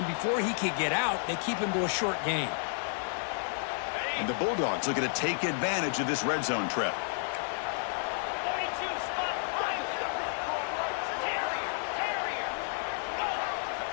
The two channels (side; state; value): right; silent; digital silence